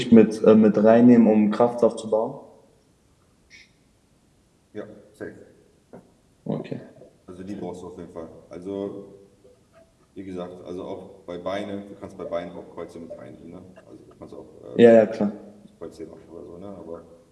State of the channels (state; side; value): identical; both; correlation 1.00